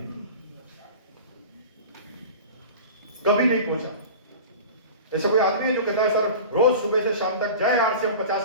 कभी नहीं पहुंचा। ऐसा कोई आदमी है जो कहता है सर रोज सुबह से शाम तक जय आरसीएम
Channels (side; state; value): both; inverted; correlation -0.36